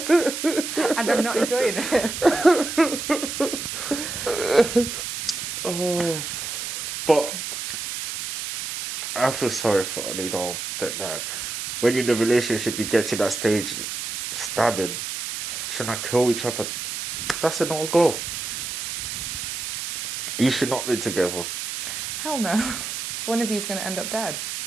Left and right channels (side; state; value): right; noise; hiss, 5 dB below the sound